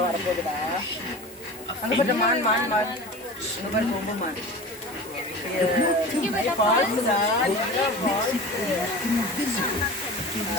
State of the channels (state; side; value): normal; both; correlation 0.34